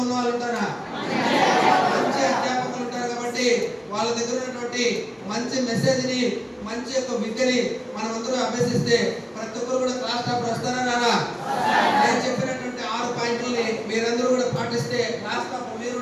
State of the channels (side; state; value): both; identical; correlation 1.00